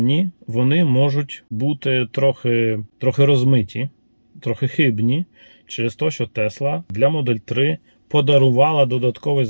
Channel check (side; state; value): both; inverted; correlation -1.00